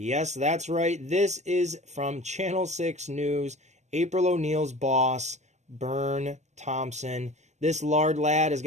that's right. This is from Channel 6 News, April O'Neil's boss, Bern Thompson. This lard lad has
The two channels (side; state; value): left; late; 0.34 ms